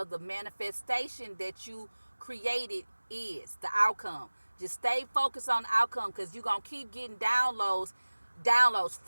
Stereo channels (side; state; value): both; inverted; correlation -1.00